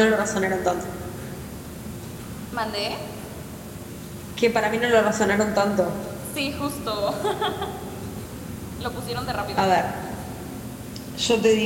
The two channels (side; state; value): both; identical; correlation 1.00